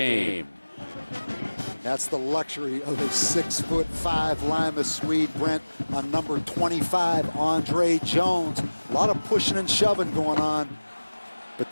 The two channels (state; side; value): inverted; both; correlation -1.00